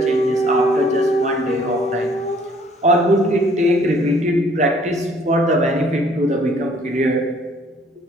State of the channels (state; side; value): normal; both; correlation 0.59